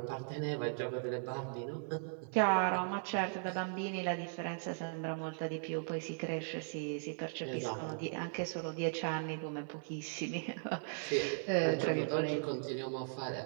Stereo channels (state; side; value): silent; left; 52 dB below the other